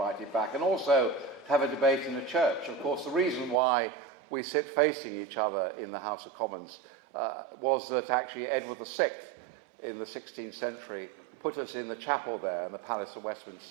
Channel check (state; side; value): drops out; left; at 3.6 s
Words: back, and also to have a debate in the church. Of course, the reason why we sit facing each other in the House of Commons was that actually Edward VI, in the 16th century, put us in the chapel there in the Palace of